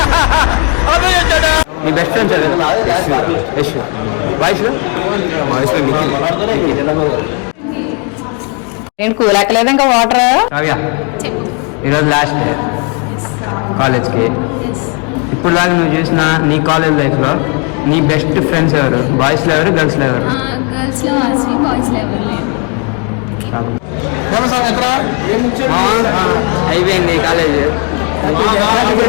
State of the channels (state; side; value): quieter; right; 34.2 dB